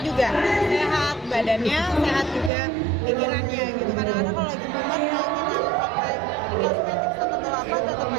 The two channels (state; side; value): drops out; left; at 2.5 s